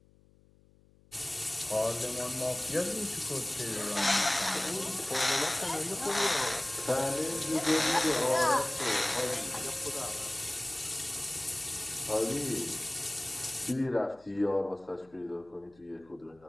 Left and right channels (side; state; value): left; noise; hum, 29 dB below the sound